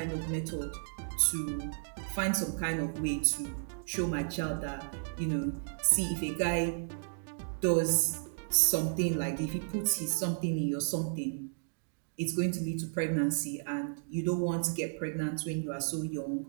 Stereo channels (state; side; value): silent; left; digital silence